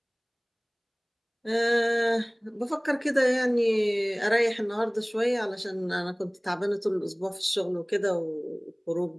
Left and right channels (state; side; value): identical; both; correlation 1.00